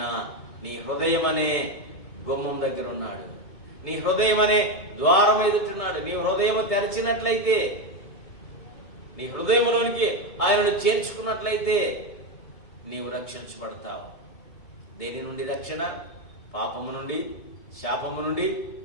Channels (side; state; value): right; late; 2.2 ms